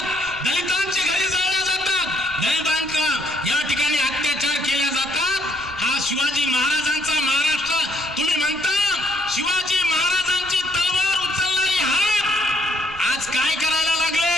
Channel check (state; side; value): noise; right; rumble, 22 dB below the sound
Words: दलितांची घरे जाळल्या जातात, दलितांचा या ठिकाणी अत्याचार केले जातात. हा शिवाजी महाराजांचा महाराष्ट्र तुम्ही म्हणता. शिवाजी महाराजांची तलवार उचलणारी हात आज काय करायला लागले?